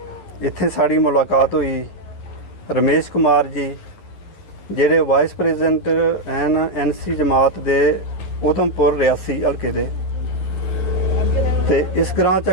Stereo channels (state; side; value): late; right; 11 ms